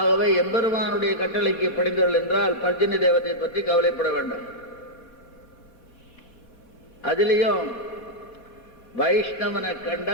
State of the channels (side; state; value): right; late; 4.5 ms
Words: எம்பெருமானுடைய கட்டளைக்கு படிந்தவர்கள் என்றால் பர்ஜன்ய தேவத்தை பற்றி கவலைப்பட வேண்டும். அதிலையும் வைஷ்ணவனை